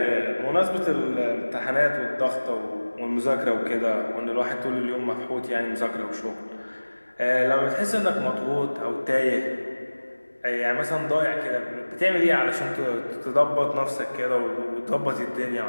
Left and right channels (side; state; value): both; inverted; correlation -1.00